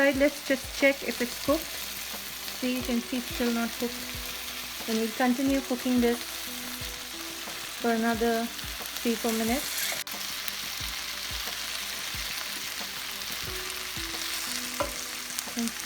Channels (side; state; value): both; identical; correlation 1.00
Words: Let's just check if it's cooked. See, you can see it's still not cooked. Then we'll continue cooking this for another 3-4 minutes. You can